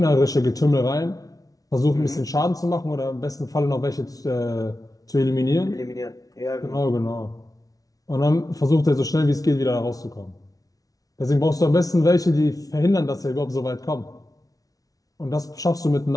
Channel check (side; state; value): right; late; 0.18 ms